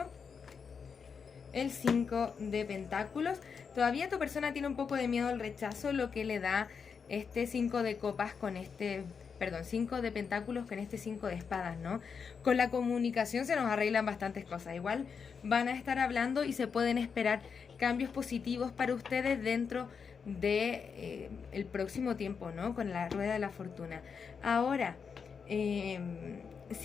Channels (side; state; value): right; quieter; 6.1 dB